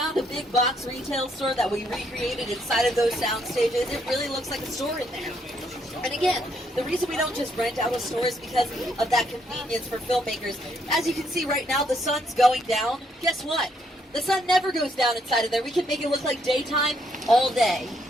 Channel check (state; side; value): normal; both; correlation 0.73